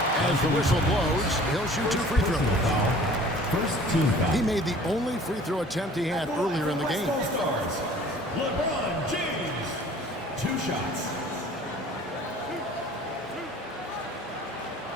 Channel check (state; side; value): normal; both; correlation 0.49